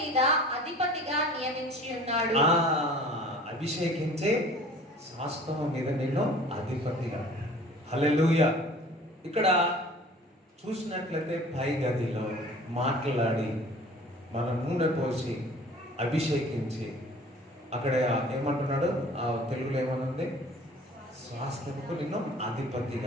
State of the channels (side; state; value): both; normal; correlation 0.47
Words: అధిపతిగా నియమించి ఉన్నాడు. అభిషేకించే స్వాస్థ్యము మీద నిన్ను అధిపతిగా. హల్లెలూయా. ఇక్కడ చూసినట్లయితే పై గదిలో మాట్లాడి మన నూనె పోసి అభిషేకించి, అక్కడ ఏమంటున్నాడు, ఆ తెలుగులో ఏమనుంది, స్వాస్థ్యముకు నిన్ను